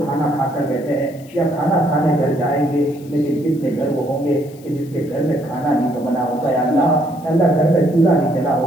کھانا کھا کر بیٹھے ہیں یا کھانا کھانے گھر جائیں گے، لیکن کتنے گھر وہ ہوں گے کہ جس کے گھر میں کھانا نہیں بنا ہوگا. یا اللہ گھر میں چولہا نہیں جلا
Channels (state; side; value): noise; left; hiss, 25 dB below the sound